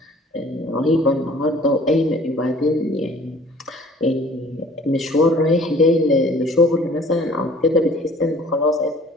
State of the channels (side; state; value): both; normal; correlation 0.52